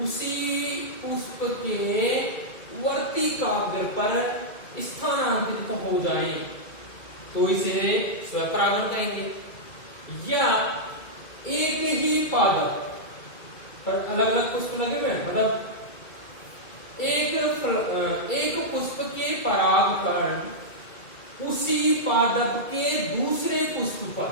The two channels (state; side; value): late; right; 2.2 ms